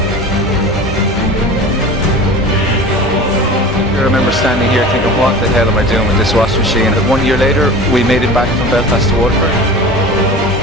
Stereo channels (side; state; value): both; normal; correlation 0.36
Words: I remember standing here thinking, what the hell am I doing with this washing machine? And 1 year later, we made it back from Belfast to Waterford.